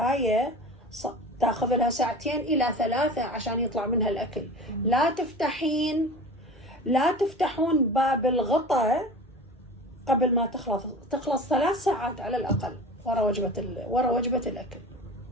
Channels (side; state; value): both; normal; correlation 0.35